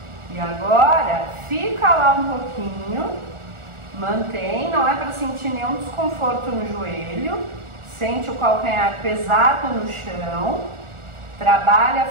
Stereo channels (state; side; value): late; left; 1.4 ms